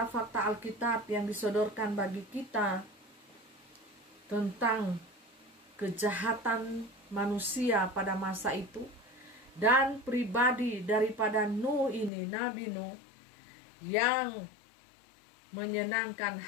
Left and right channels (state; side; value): drops out; right; at 12.1 s